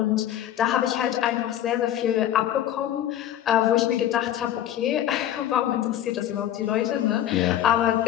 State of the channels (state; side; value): quieter; right; 11.5 dB